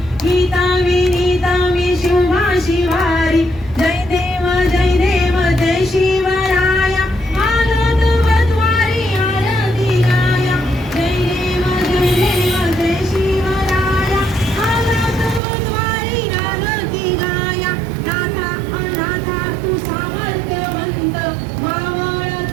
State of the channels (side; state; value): left; drops out; at 15.4 s